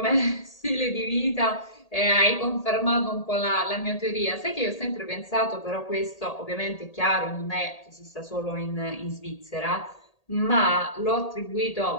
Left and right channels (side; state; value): right; late; 1.8 ms